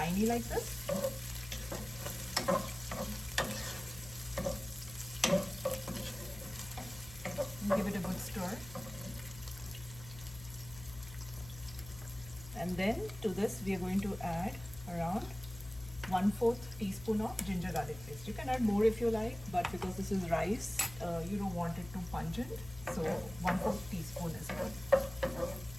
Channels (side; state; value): left; noise; hum, 15 dB below the sound